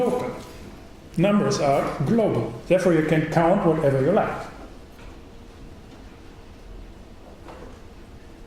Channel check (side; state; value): both; identical; correlation 1.00